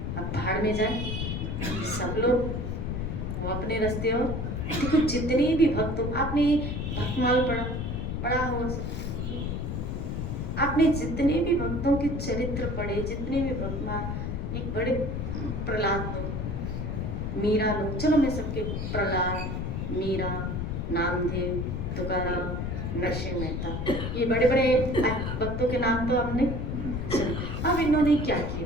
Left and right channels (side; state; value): left; noise; rumble, 3 dB below the sound